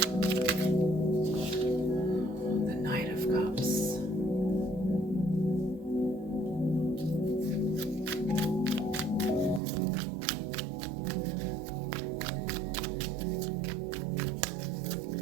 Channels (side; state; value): left; drops out; at 9.6 s